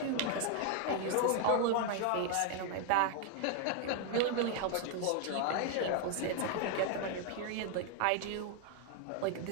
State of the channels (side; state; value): both; different; correlation 0.00